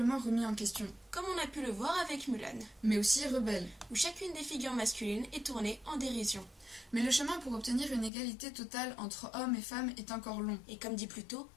remis en question. Comme on a pu le voir avec Mulan. Mais aussi rebelle. Où chacune des figures masculines est tournée en dérision. Mais le chemin pour obtenir une égalité totale entre hommes et femmes est encore long. Et comme dit plus tôt,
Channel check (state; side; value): drops out; right; at 8.1 s